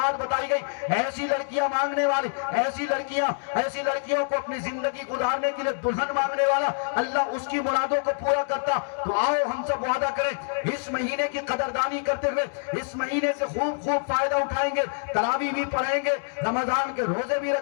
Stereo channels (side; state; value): right; silent; 61 dB below the other